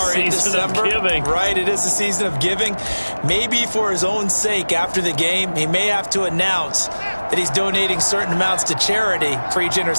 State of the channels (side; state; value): both; inverted; correlation -1.00